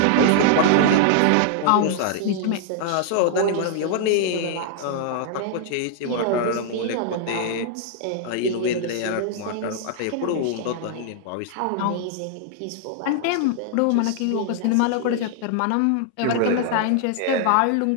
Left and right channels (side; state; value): both; different; correlation -0.01